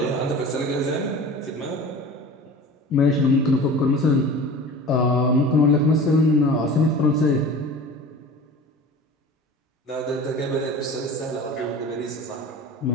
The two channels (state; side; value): normal; both; correlation 0.37